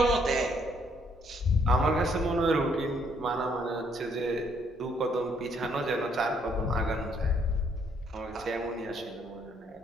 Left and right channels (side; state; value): both; normal; correlation 0.68